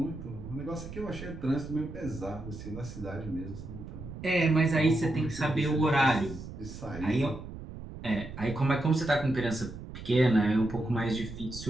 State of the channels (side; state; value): right; noise; rumble, 11 dB below the sound